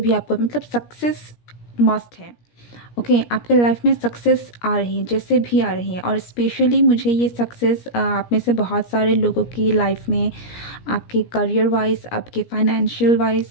आपको मतलब सक्सेस मस्ट है, ओके? आपके लाइफ में सक्सेस आ रही है, जैसे भी आ रही है, और स्पेशली मुझे ये सक्सेस आप में से बहुत सारे लोगों की लाइफ में आपके करियर वाइज, आपके फाइनेंशियल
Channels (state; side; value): late; right; 17 ms